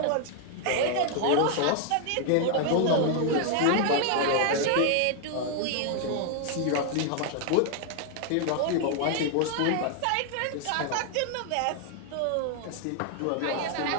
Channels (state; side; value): different; both; correlation 0.00